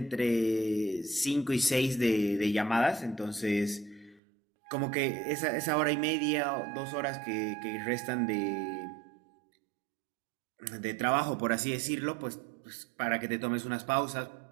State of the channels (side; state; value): left; drops out; at 4.2 s